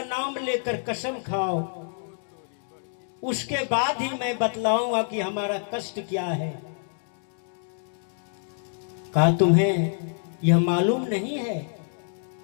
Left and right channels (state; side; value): silent; right; 58 dB below the other